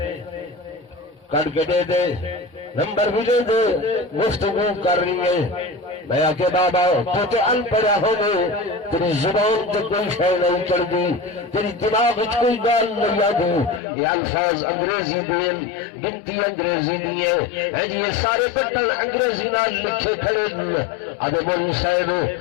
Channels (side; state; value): right; drops out; at 13.8 s